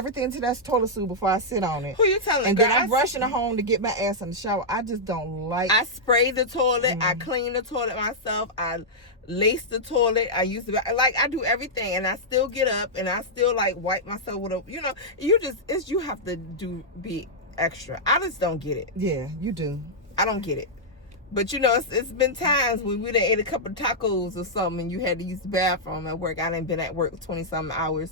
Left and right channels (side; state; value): both; normal; correlation -0.08